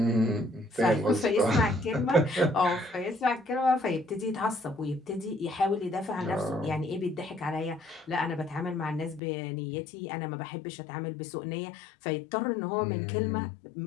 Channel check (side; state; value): right; drops out; at 9.2 s